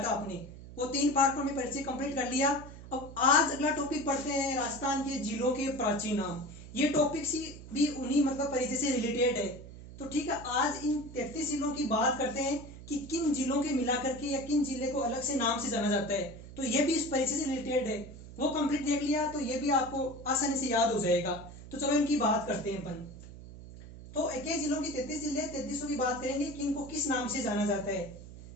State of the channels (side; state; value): right; noise; hum, 15 dB below the sound